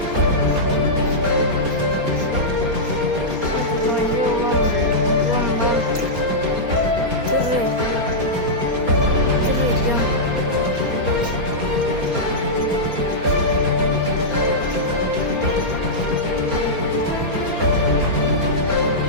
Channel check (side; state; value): left; late; 4.3 ms